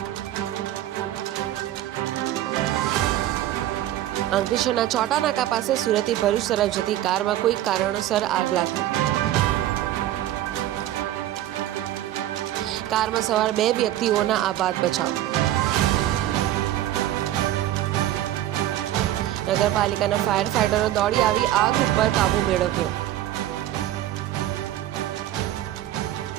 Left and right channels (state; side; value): quieter; left; 13.4 dB